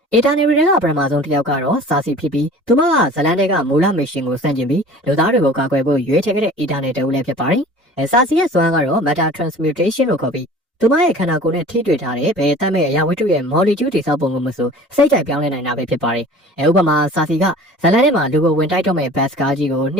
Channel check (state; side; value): normal; both; correlation 0.43